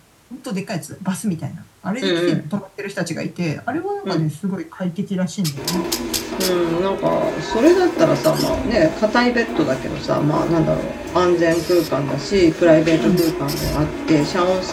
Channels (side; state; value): both; identical; correlation 1.00